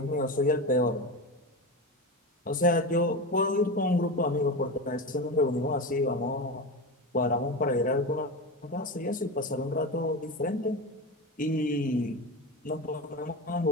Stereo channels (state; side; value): normal; both; correlation 0.22